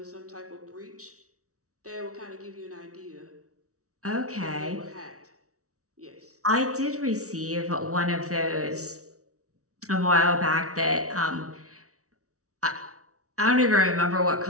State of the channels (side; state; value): left; late; 0.65 ms